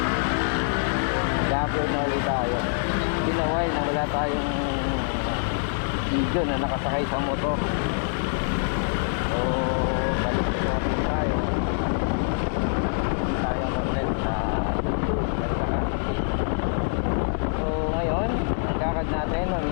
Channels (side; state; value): right; silent; digital silence